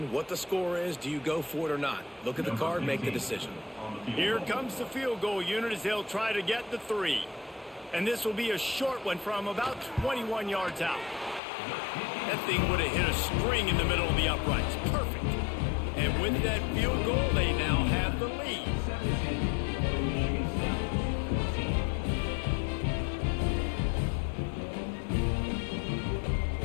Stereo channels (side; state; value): right; drops out; at 11.4 s